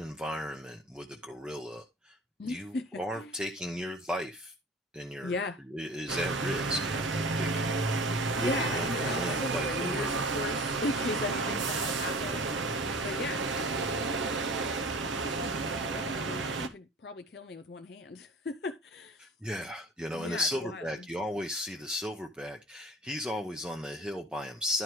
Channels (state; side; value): normal; both; correlation 0.42